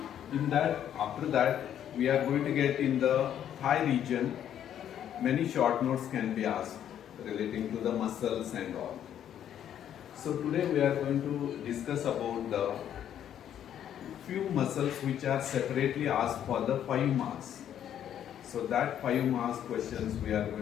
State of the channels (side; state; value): right; quieter; 10.1 dB